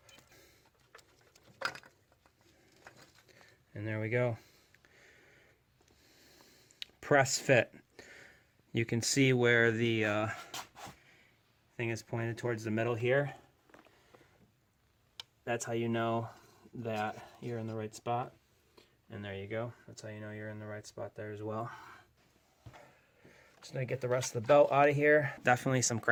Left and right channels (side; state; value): both; identical; correlation 1.00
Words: And there we go. Press fit. You can see where the thing is pointed towards the middle here. That's how you know that you're in the right spot. And there you go. That's how you know you're in the right spot there as well. Just gonna get the rest of the belt out of here. Definitely some